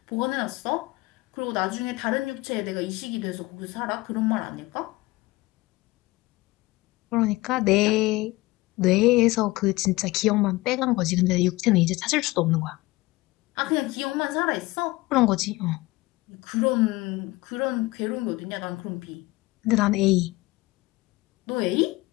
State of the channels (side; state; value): right; quieter; 20.8 dB